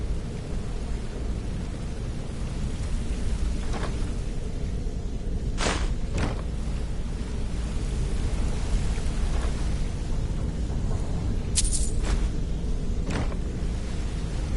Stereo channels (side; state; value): both; identical; correlation 1.00